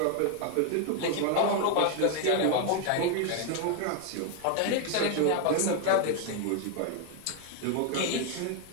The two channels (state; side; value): different; both; correlation 0.01